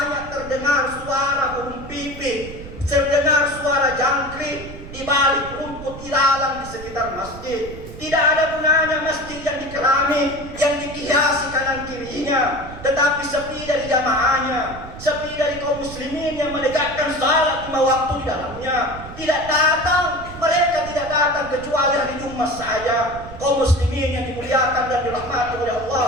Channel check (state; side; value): noise; right; rumble, 14 dB below the sound